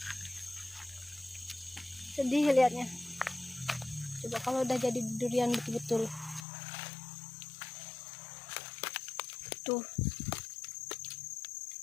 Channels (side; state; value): right; drops out; at 6.5 s